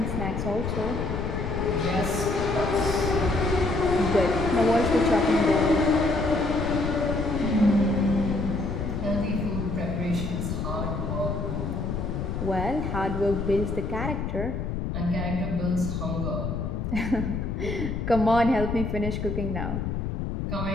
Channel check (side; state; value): left; noise; rumble, 3 dB below the sound